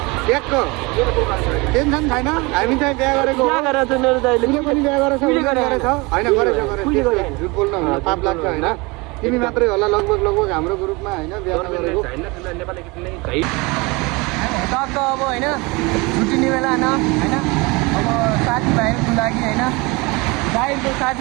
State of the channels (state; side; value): quieter; left; 25.6 dB